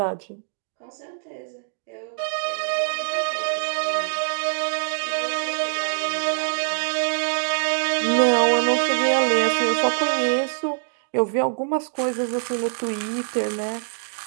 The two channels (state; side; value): silent; left; digital silence